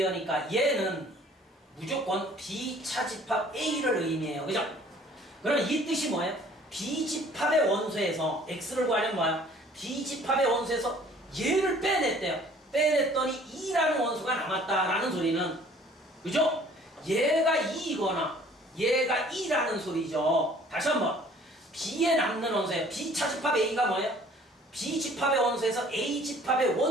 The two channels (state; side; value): normal; both; correlation 0.54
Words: 얘는 무조건 B 차집합 A를 의미해요. 그죠? 그럼 이 뜻이 뭐예요? B집합의 원소에서 X를 구하려면 뭐예요? B집합의 원소에서 얘를 빼냈대요. 빼냈더니 2라는 원소가 남았다라는 소리는 그죠? 얘가 2이거나 얘가 2라는 소리죠. 다시 한번 B에 남는 원소예요. B 차집합 A가 뭐예요? B집합의 원소에서 A집합의